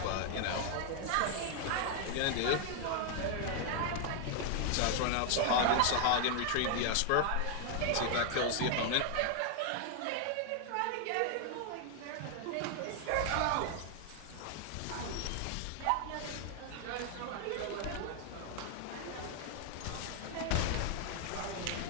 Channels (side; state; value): both; different; correlation 0.00